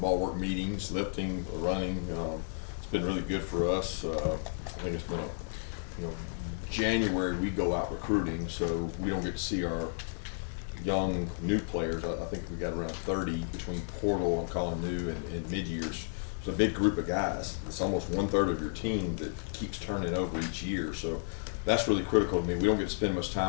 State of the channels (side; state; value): right; silent; digital silence